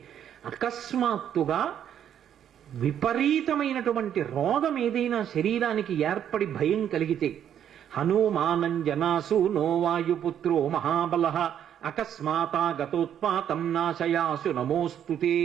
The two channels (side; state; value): left; quieter; 9.6 dB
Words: అకస్మాత్తుగా విపరీతమైనటువంటి రోగం ఏదైనా శరీరానికి ఏర్పడి భయం కలిగితే, హనుమానం జనాసు నోవాయుపుత్రో మహాబల అకస్మాతాగతోత్పాతం నాశయాసు నమోస్తుతే,